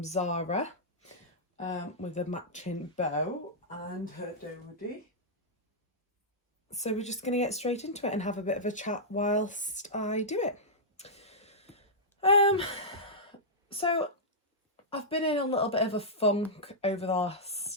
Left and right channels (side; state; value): both; normal; correlation -0.11